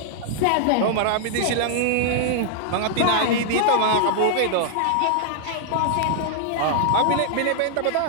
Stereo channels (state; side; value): different; both; correlation -0.01